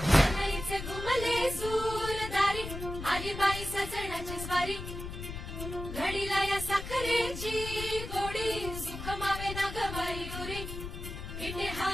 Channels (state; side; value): noise; left; rumble, 8 dB below the sound